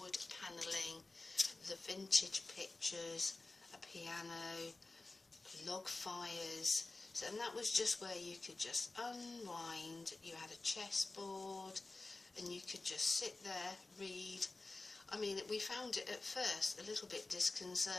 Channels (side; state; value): right; quieter; 3.3 dB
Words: wood panelling, the vintage pictures, a piano, log fires, and that was just where you could just unwind. You had a chessboard and you could just sit there, read. I mean, we found it at first a little bit